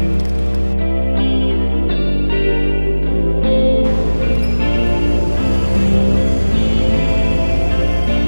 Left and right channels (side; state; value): both; inverted; correlation -1.00